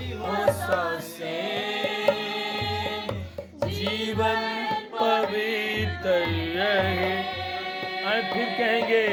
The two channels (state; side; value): identical; both; correlation 1.00